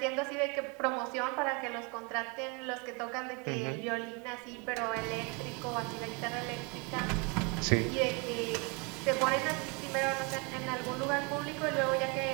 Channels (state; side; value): quieter; left; 30.8 dB